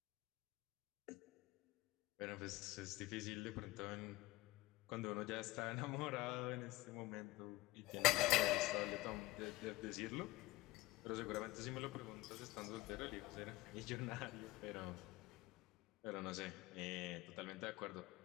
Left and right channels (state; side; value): quieter; right; 18.3 dB